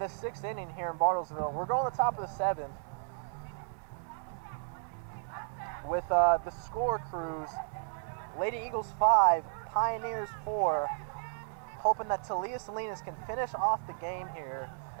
6th inning here in Bartlesville. We're going to the top of the 7th with the score, Crews. Lady Eagles 5, Pioneers 4. Hoping that Talia Salinas can finish off the game here.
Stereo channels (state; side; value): silent; left; 55 dB below the other